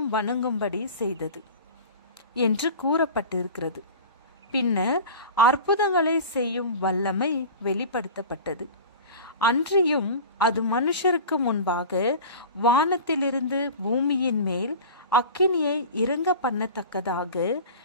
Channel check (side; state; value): both; inverted; correlation -0.35